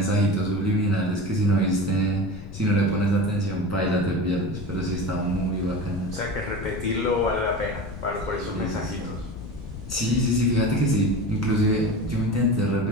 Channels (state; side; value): noise; left; rumble, 12 dB below the sound